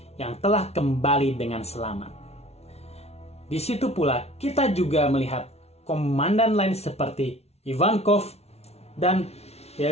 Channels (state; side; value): late; right; 0.31 ms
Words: yang telah kembali dengan selamat. Di situ pula kita juga melihat komandan lain seperti Ivankov dan